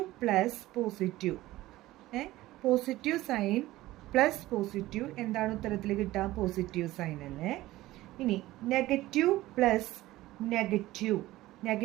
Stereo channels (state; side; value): quieter; left; 17.0 dB